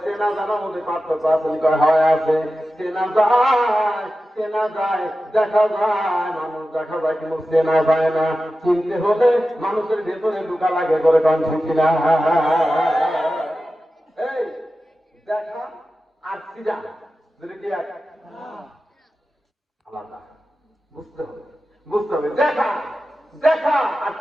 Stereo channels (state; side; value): normal; both; correlation 0.93